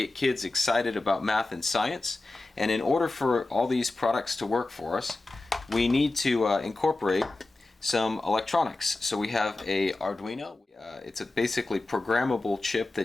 kids excited about math and science, and in order for all these products to work for us, we need to incorporate some electronics. So we have a Arduino. It's a basically programmable chip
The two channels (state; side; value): quieter; right; 3.1 dB